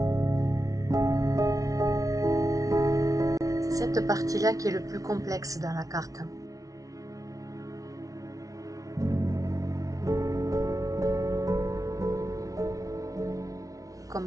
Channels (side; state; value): left; late; 0.17 ms